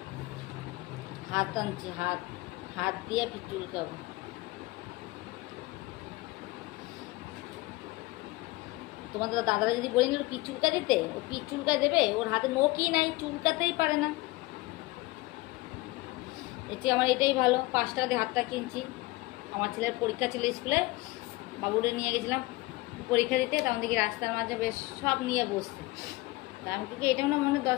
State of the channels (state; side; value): quieter; right; 21.3 dB